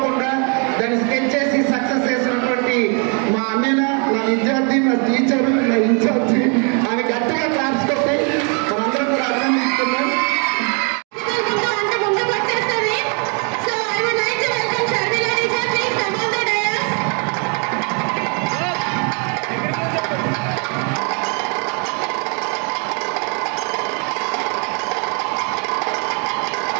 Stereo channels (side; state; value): left; quieter; 37.0 dB